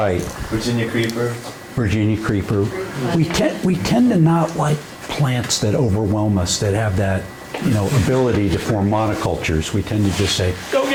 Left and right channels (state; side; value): identical; both; correlation 1.00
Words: Virginia creeper. Virginia creeper. We tend to not like plants that overwhelm us, that have that, ability to form monocultures. We tend to just say, go